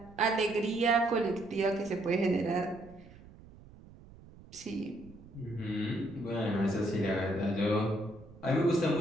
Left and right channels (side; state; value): right; noise; rumble, 21 dB below the sound